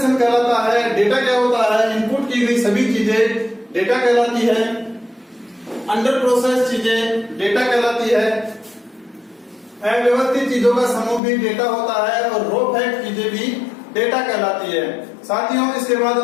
कहलाता है, डेटा क्या होता है? इनपुट की गई सभी चीजें डेटा कहलाती है। अंडर प्रोसेस चीजें डेटा कहलाती है। अव्यवस्थित चीजों का समूह भी डेटा होता है और रो फैक्ट चीजें भी डेटा कहलाती है। साथियों, इसके बाद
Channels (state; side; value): drops out; right; at 11.2 s